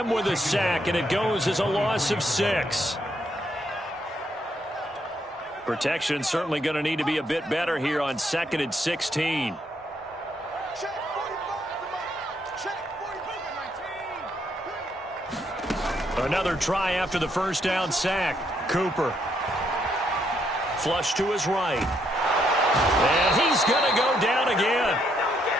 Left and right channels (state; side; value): normal; both; correlation 0.74